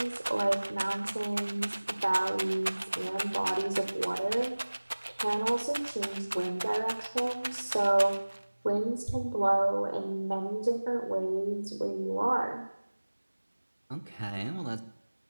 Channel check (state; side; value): inverted; both; correlation -1.00